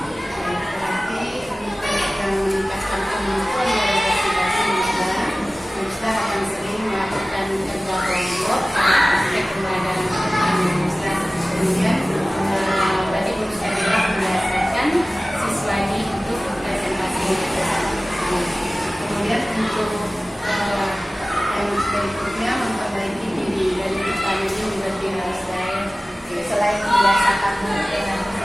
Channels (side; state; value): both; normal; correlation 0.97